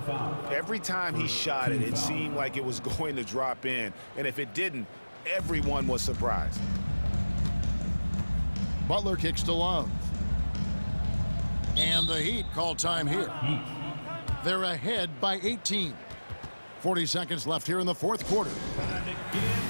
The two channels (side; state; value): both; inverted; correlation -1.00